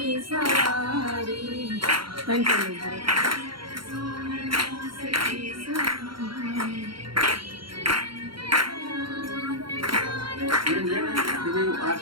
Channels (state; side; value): late; left; 0.73 ms